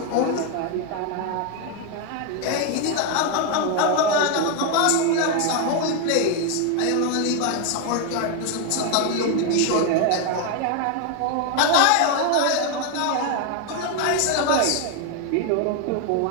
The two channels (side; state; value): both; different; correlation 0.01